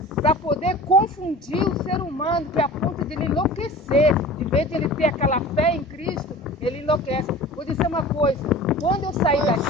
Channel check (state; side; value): normal; both; correlation 0.39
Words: para poder confundir o ser humano, que é a ponto de ele enlouquecer. De vez de ele ter aquela fé em Cristo, ele enlouquece. Vou dizer uma coisa, quando eu saí